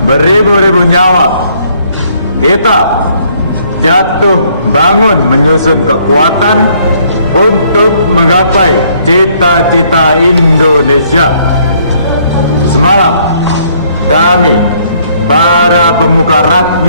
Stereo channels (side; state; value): both; inverted; correlation -0.65